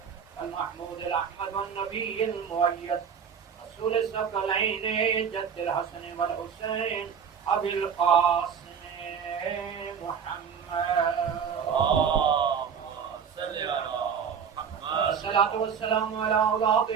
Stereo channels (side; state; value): left; quieter; 7.1 dB